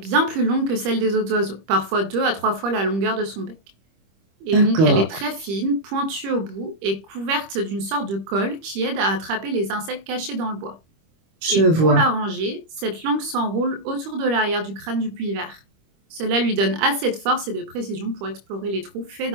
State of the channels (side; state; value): left; late; 25 ms